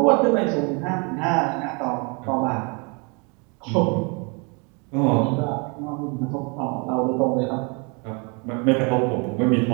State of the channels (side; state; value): left; quieter; 32.6 dB